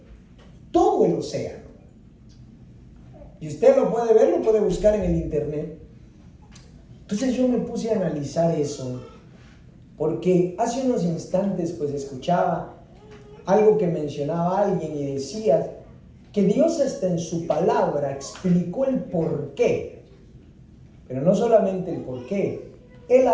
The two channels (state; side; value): identical; both; correlation 1.00